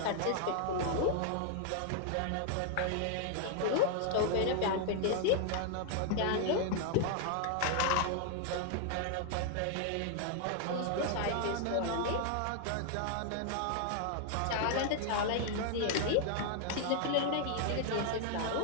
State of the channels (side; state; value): both; different; correlation 0.00